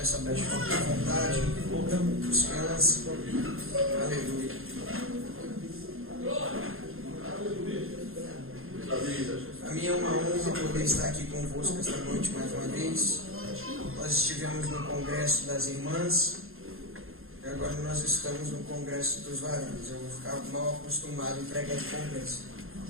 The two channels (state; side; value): late; left; 0.61 ms